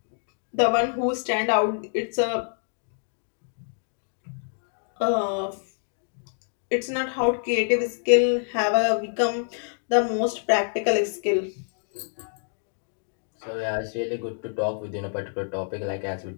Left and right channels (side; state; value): right; silent; digital silence